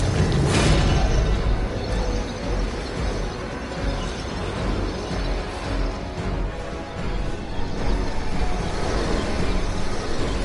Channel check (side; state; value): both; identical; correlation 1.00